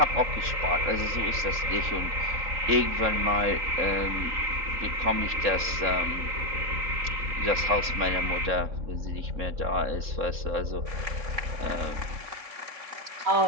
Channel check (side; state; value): left; late; 3.7 ms